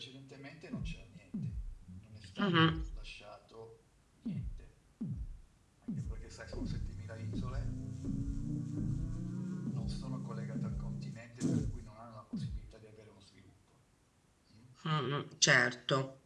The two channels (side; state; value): both; identical; correlation 1.00